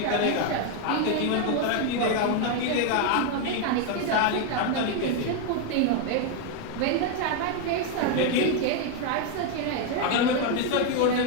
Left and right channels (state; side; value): different; both; correlation 0.01